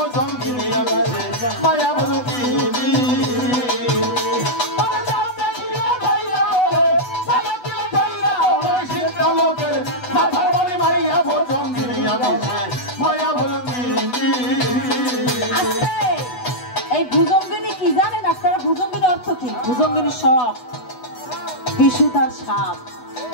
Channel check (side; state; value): right; late; 8.1 ms